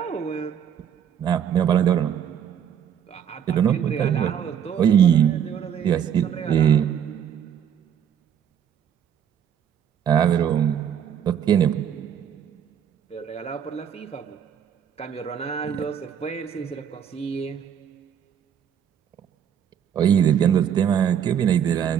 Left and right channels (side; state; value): left; quieter; 8.7 dB